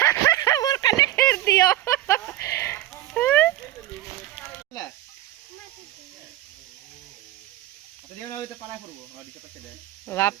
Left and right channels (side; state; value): left; quieter; 14.5 dB